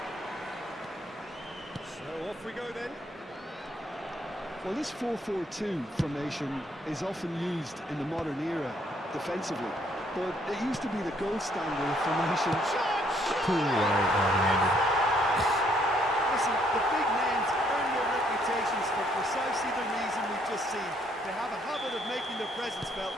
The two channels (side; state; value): both; normal; correlation 0.68